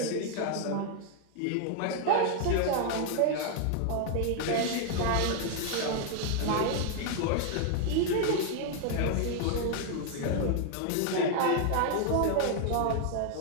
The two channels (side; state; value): both; different; correlation 0.00